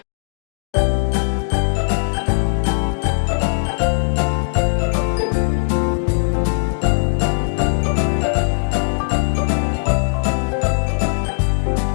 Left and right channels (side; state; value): right; silent; digital silence